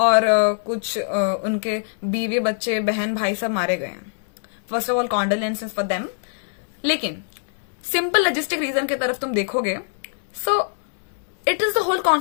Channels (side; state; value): right; silent; digital silence